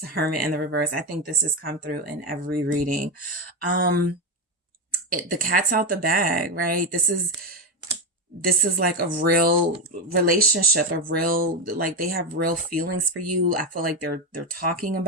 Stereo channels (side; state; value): both; normal; correlation 0.10